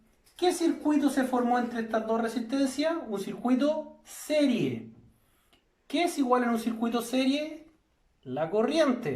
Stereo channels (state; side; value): identical; both; correlation 1.00